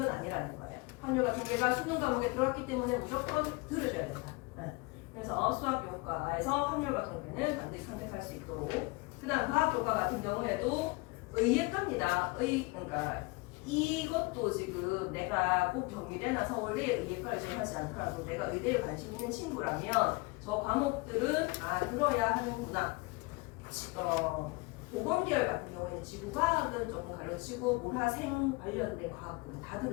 아니라는 거예요. 확률과 통계가 수능 과목에 들어갔기 때문에 무조건 들으셔야 된다. 네. 그래서 수학 교과에서 확률과 통계는 반드시 선택할 수 있도록. 그다음 과학 교과 같은 경우에도 의예과입니다. 그러니까 이것도 지금 내가 꼭 경희대나 서울대 의예과를 지원하지 않더라도 내가 의대에 관심 있는 친구라면 저 과목들은 들어야 하는구나. 보건계열 같은 경우에는 지구과학은 조금 가려치고 모라생 관련된 과학들은 다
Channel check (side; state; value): right; quieter; 25.5 dB